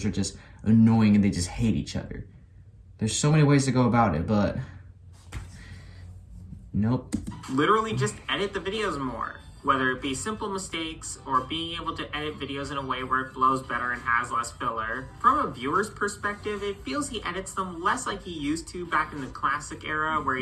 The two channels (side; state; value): both; identical; correlation 1.00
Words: are just annoying and they just hate each other. There's so many ways to go about it, but nope. Literally just edit the videos more. Whether it be simple mistakes or being able to edit videos in a way where it flows better and has less filler. From a viewer's perspective, it feels he edits them less like he used to back in the classic era where